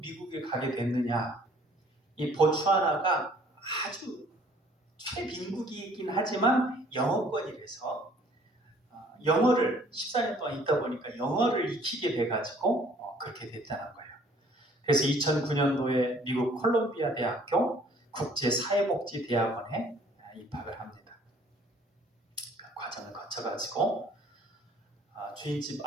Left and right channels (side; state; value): both; normal; correlation 0.57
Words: 가게 됐느냐? 이 보츠와나가 아주 최빈국이긴 하지만 영어권이라서 영어를 14년 동안 있다 보니까 영어를 익히게 돼가지고 그렇게 됐다는 거예요. 그래서 2009년도에 미국 콜롬비아 대학교 국제사회복지대학원에 입학을 합니다. 그 과정을 거쳐가지고 주인집